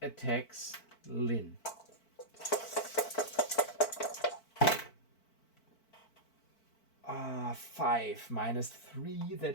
attacks Lynn. 5 minus 3,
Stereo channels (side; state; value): right; late; 4.5 ms